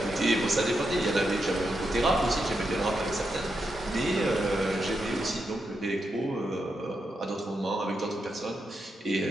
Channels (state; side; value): normal; both; correlation 0.84